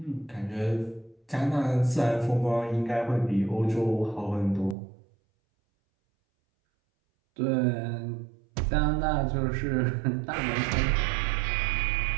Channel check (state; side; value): drops out; left; at 4.8 s